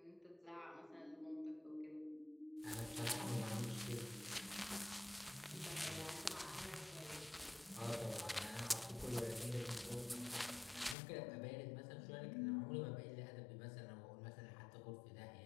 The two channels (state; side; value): drops out; right; at 11.0 s